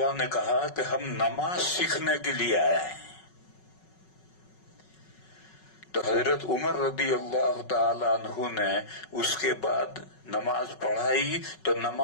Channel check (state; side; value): late; right; 5.4 ms